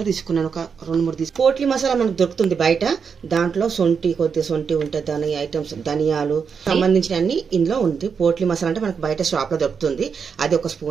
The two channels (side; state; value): left; quieter; 6.2 dB